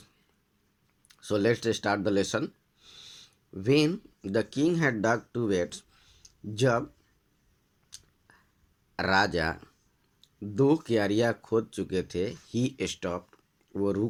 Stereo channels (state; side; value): identical; both; correlation 1.00